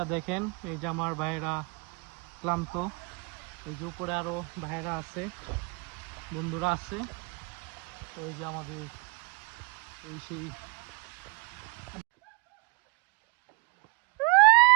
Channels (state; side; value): quieter; left; 29.1 dB